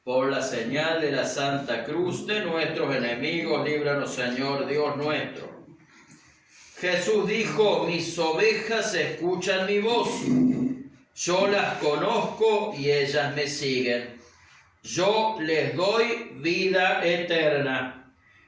Por la señal de la Santa Cruz de nuestros enemigos, líbranos, Señor Dios nuestro. Jesús dijo: mis ovejas escuchan mi voz. Yo las conozco y ellas me siguen. Yo les doy vida eterna.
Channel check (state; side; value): identical; both; correlation 1.00